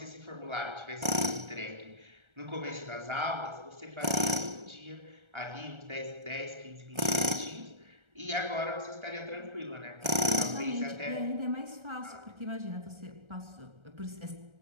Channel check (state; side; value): late; left; 1.3 ms